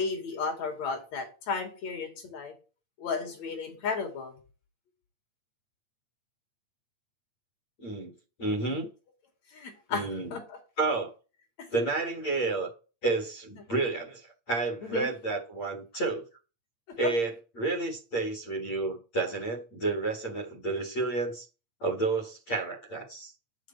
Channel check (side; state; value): right; late; 8.7 ms